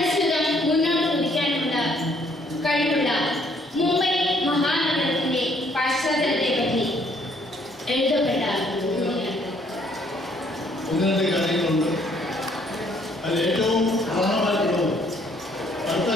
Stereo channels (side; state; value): both; normal; correlation 0.65